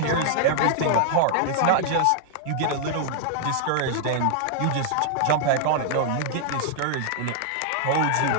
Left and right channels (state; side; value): different; both; correlation -0.01